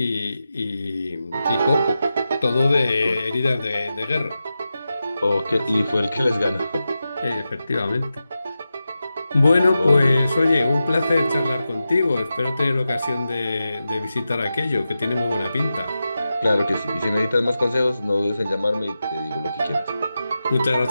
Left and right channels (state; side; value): inverted; both; correlation -0.91